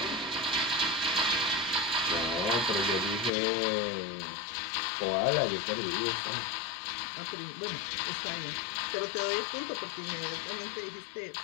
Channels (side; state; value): right; drops out; at 3.3 s